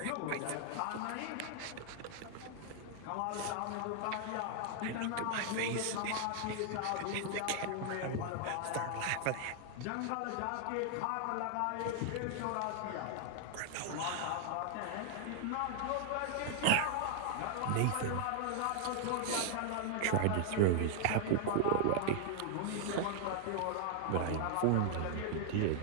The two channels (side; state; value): both; different; correlation 0.00